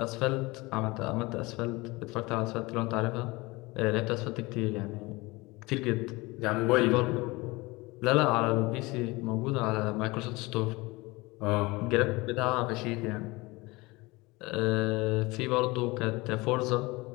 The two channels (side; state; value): right; quieter; 23.0 dB